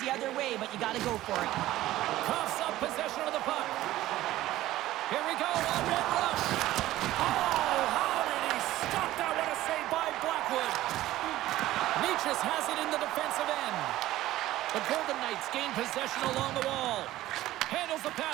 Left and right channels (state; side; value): quieter; left; 15.3 dB